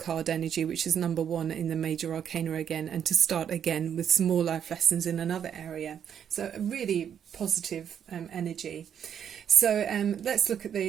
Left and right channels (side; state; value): left; quieter; 8.6 dB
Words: energy, which is number 1 in the major arcana again, and to start again with some more life lessons in another area. So a really positive energy. So let's look at